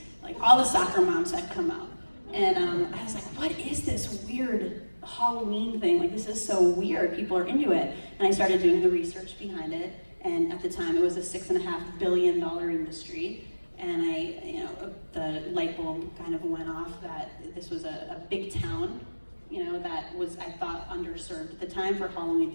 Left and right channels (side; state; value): both; inverted; correlation -1.00